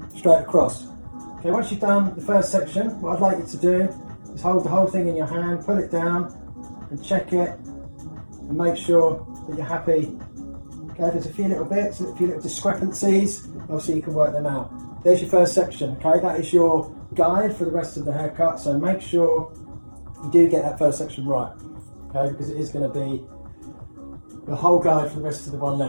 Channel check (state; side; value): inverted; both; correlation -1.00